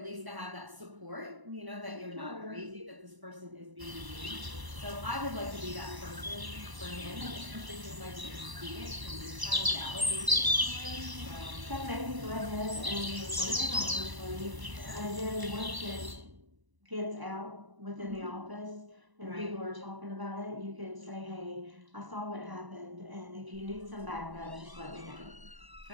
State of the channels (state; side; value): late; left; 1.0 ms